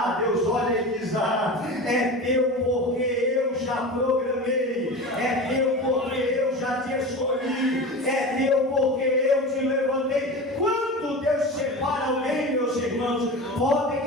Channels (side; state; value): both; normal; correlation 0.30